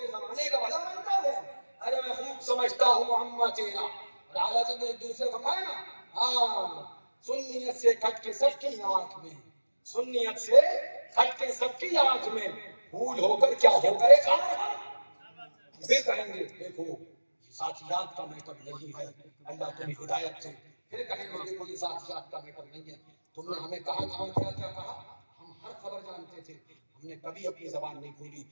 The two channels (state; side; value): inverted; both; correlation -1.00